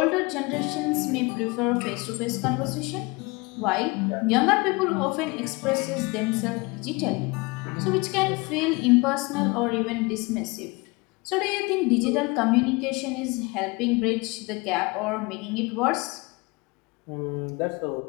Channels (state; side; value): quieter; right; 26.1 dB